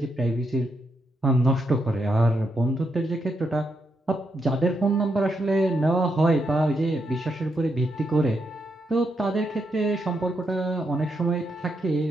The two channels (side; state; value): both; normal; correlation 0.81